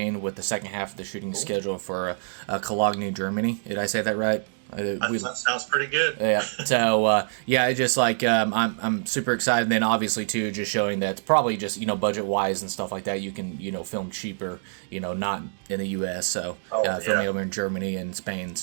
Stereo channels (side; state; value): left; silent; digital silence